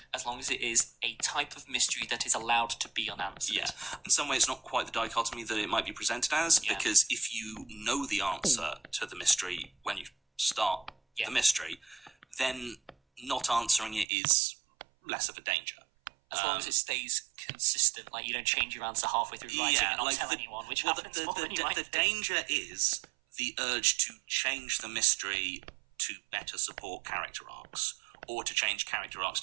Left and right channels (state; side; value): drops out; left; at 14.1 s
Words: as long as it is a type of mystery that is allowed to be unanswered. Yeah. In some way, it's not quite the dichotomy that it might be presented as, Yeah. because if you know the answer to the mystery when you start the mystery, then not answering it is less of a danger. As long as it stays consistent, like you don't change your answer halfway through writing and not tell anyone, which happens more than you might the think. danger is the urge to change the mystery to better support character arcs, or to change character arcs